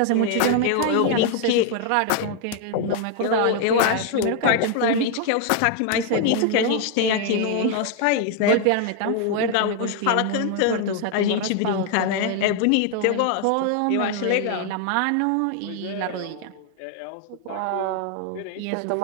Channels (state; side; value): different; both; correlation 0.00